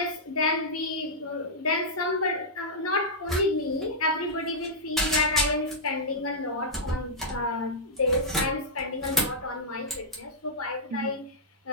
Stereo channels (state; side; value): normal; both; correlation -0.09